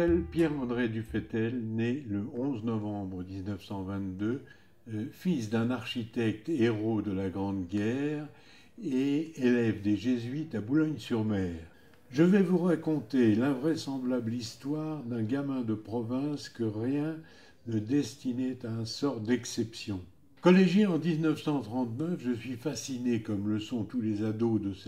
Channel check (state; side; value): identical; both; correlation 1.00